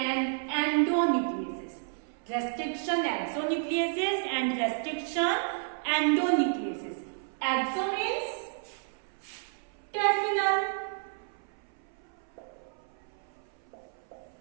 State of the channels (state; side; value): silent; left; 57 dB below the other